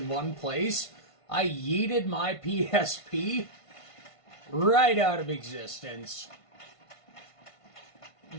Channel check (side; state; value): right; late; 1.5 ms